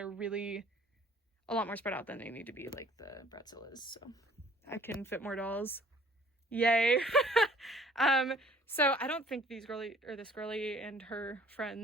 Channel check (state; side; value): normal; both; correlation 0.55